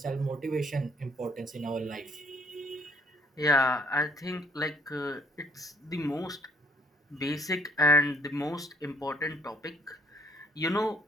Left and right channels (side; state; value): both; normal; correlation 0.62